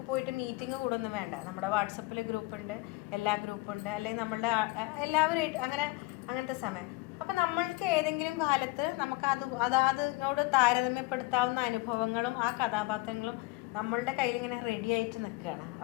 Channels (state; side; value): quieter; right; 22.2 dB